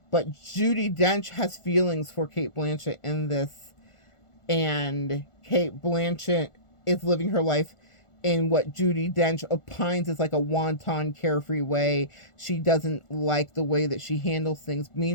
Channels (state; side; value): late; right; 1.4 ms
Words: But Judi Dench has feelings for Kate Blanchett in this, and Kate Blanchett is living her life in what Judi Dench opines is like a wanton, carefree way. She doesn't like the way that she handles things.